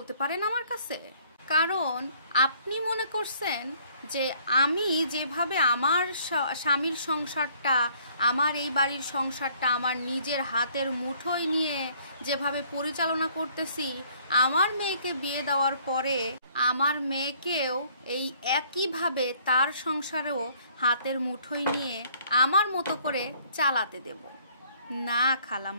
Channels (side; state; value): both; inverted; correlation -0.61